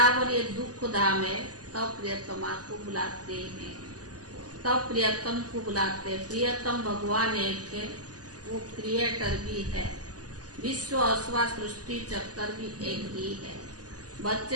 ये दुख धाम है, तब प्रियतमा को बुलाते हैं, तब प्रियतम को बुलाते हैं। प्रियतम भगवान एक है, वो क्रिएटर भी है। विश्व अथवा सृष्टि चक्कर भी एक ही है।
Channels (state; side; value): late; left; 0.68 ms